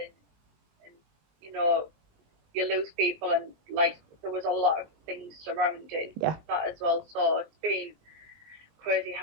you know, you lose people, and like there was a lot of things surrounding Yeah. that as well. So it's been crazy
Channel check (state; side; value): late; left; 20 ms